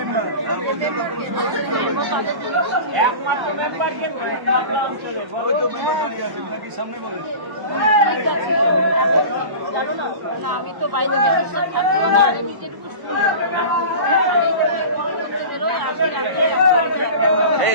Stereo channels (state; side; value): late; left; 1.1 ms